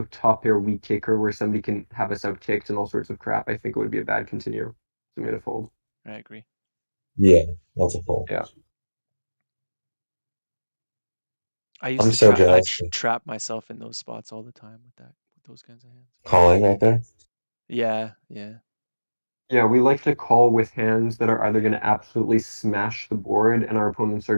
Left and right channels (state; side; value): inverted; both; correlation -1.00